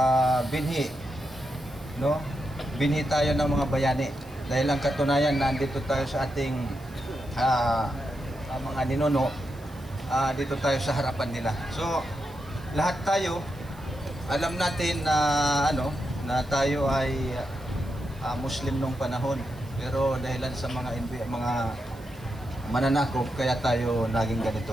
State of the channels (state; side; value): noise; right; hiss, 26 dB below the sound